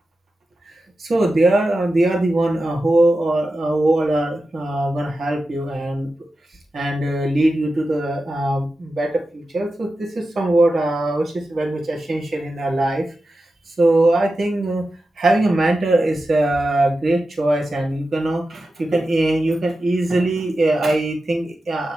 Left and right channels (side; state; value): both; normal; correlation 0.92